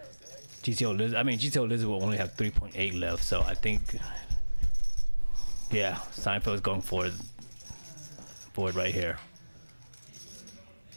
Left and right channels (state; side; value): inverted; both; correlation -1.00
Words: GTO Lizard will only have 3.8 left. So I think, yeah, Seinfeld's going for it right here.